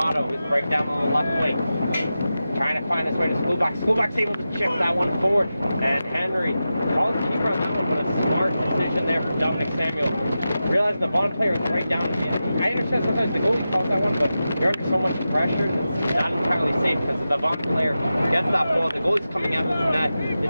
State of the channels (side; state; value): both; inverted; correlation -0.92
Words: who's right down on the left wing. Trying to find his way to Schoolback. Schoolback's able to chip that one forward. And Henry calls the keeper on that one, but a smart decision there from Dominic Samuel. Realize the Vaughan player is right down in the end. I understand sometimes the goalie calls that one, but you're under so much pressure, it's not entirely safe because if the Vaughan player gets that ball, the goalie's coming out of the net,